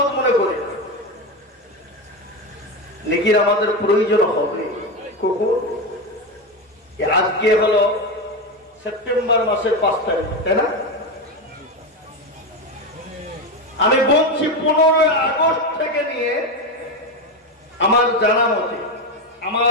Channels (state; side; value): normal; both; correlation 0.15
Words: মনে করি। নেকির আমাদের প্রয়োজন হবে কখন? আজকে হলো সেপ্টেম্বর মাসের 5 তারিখ, তাই না? আমি বলছি 15 আগস্ট থেকে নিয়ে আমার জানা মতে,